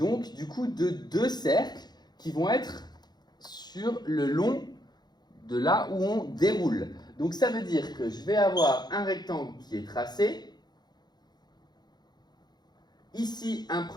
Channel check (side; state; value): right; late; 0.20 ms